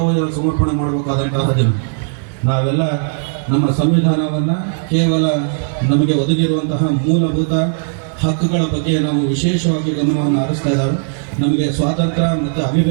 ಸಮರ್ಪಣೆ ಮಾಡಬೇಕಾದಂತಹ ದಿನ. ನಾವೆಲ್ಲ ನಮ್ಮ ಸಂವಿಧಾನವನ್ನು ಕೇವಲ ನಮಗೆ ಒದಗಿರುವಂತಹ ಮೂಲಭೂತ ಹಕ್ಕುಗಳ ಬಗ್ಗೆ ನಾವು ವಿಶೇಷವಾಗಿ ಗಮನವನ್ನು ಹರಿಸ್ತಾ ಇದ್ದಾವೆ. ನಮಗೆ ಸ್ವಾತಂತ್ರ್ಯ ಮತ್ತು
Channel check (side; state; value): left; silent; digital silence